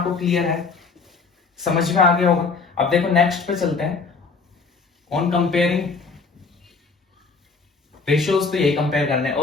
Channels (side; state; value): right; quieter; 4.6 dB